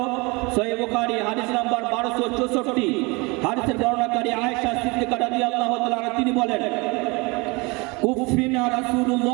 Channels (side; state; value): left; quieter; 26.7 dB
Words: সহিহ বুখারী হাদিস নাম্বার 1264, হাদিসের বর্ণনাকারী আয়েশা সিদ্দিকা রাদিয়াল্লাহু তাআলা আনহা তিনি বলেন কুফিনা